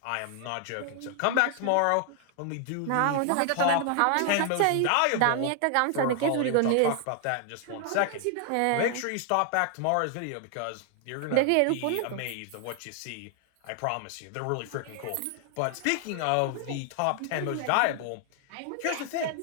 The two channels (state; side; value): different; both; correlation 0.00